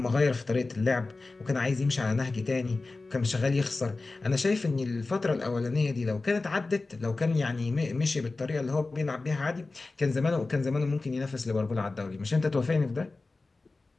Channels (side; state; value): right; quieter; 3.5 dB